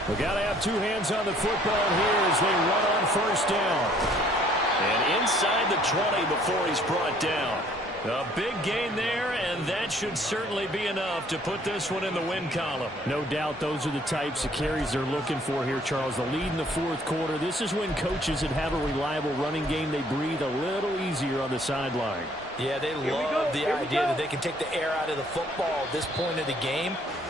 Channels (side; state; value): both; normal; correlation 0.60